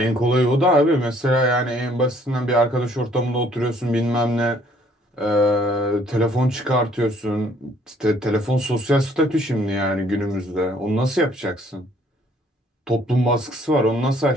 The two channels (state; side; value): normal; both; correlation 0.62